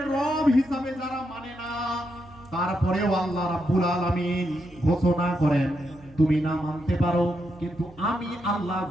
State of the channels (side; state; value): right; noise; hum, 24 dB below the sound